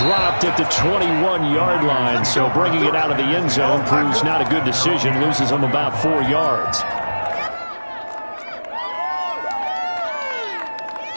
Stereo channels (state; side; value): inverted; both; correlation -1.00